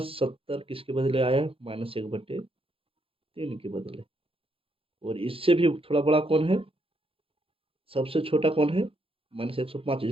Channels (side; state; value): left; late; 0.27 ms